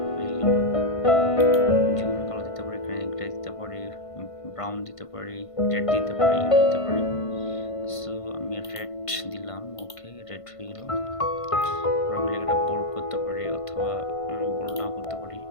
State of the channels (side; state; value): right; late; 1.5 ms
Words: হয়ে গেল। যে কোনো কালার দিতে পারি, গ্রে দিতে পারি, ব্রাউন দিতে পারি, রেড দিতে পারি, ইয়েলো দিতে পারি। সো আমি রেড দিলাম। ওকে, রেড হয়ে গেল। আমি একটা বোল্ড করতে পারি অথবা বোল্ড নাও করতে পারি।